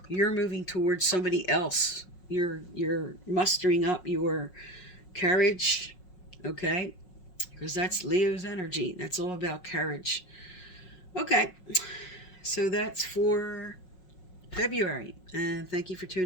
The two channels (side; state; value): right; late; 5.5 ms